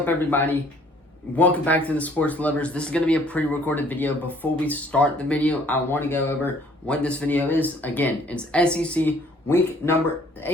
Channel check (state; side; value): normal; both; correlation 0.58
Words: everybody? Welcome back to the Sports Lovers. This is going to be a pre-recorded video. Before we start the video, I want to go over what this video is. Again, it's SEC week number